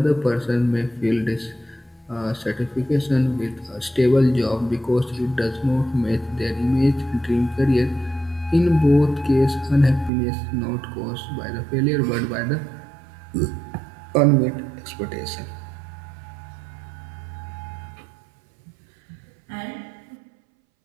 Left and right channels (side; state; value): left; drops out; at 10.1 s